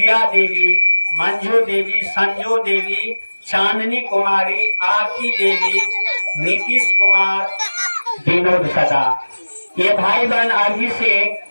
देवी, मंजू देवी, संजू देवी, चांदनी कुमारी, आरती देवी, नीतीश कुमार, विनोद सदा। ये भाई बहन अभी से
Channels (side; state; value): both; inverted; correlation -1.00